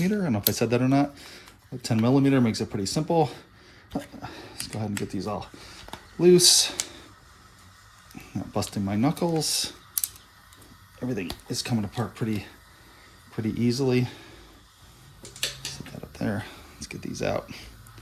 I don't know if I said that or not. A 10 millimeter makes it pretty simple. Let's go ahead and get these all loose. Not busting my knuckles. Everything is coming apart pretty easily. Set that up there. Let's get these out.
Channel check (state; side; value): identical; both; correlation 1.00